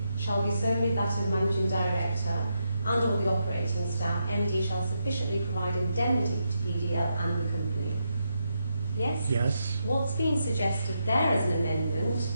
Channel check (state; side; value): inverted; both; correlation -0.82